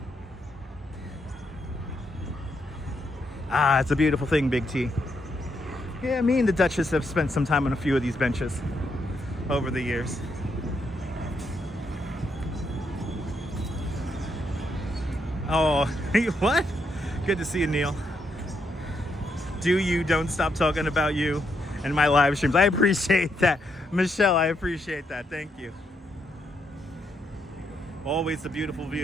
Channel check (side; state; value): both; normal; correlation 0.78